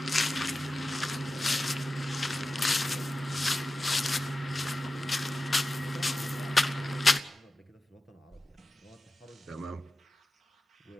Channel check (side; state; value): both; normal; correlation 0.93